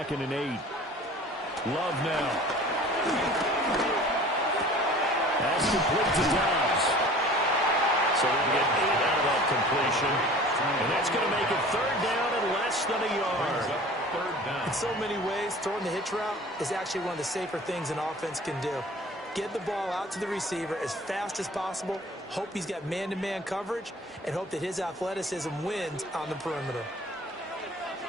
and 8. Love now. That's complete to Dobbs. So they'll get 8 out of that completion. And that's going to make it 3rd down and less than a yard. In so many ways, throwing the hitch route is actually one of the safer things an offense can do. Get the ball out to the receiver as fast as possible, hope he's got man-to-man coverage, and hope that his athleticism wins on the perimeter.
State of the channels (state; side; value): normal; both; correlation 0.45